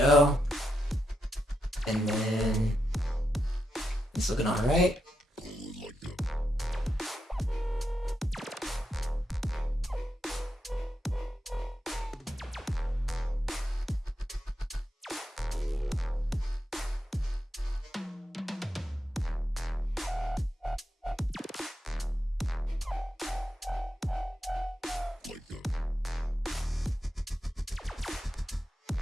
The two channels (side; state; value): both; normal; correlation 0.84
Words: And then it's looking all right.